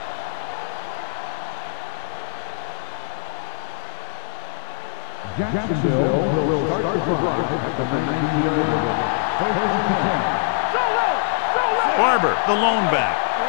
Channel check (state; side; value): silent; right; digital silence